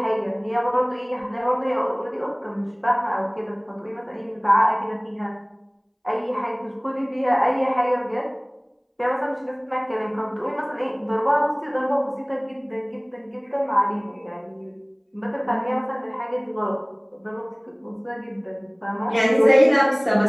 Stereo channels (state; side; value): identical; both; correlation 1.00